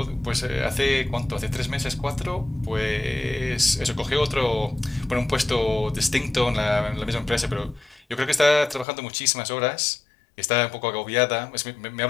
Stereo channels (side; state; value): right; drops out; at 8.8 s